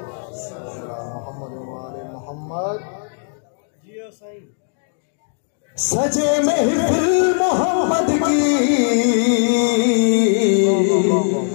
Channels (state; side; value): silent; right; 66 dB below the other